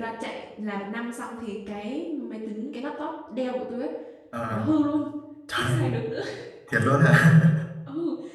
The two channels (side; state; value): both; identical; correlation 1.00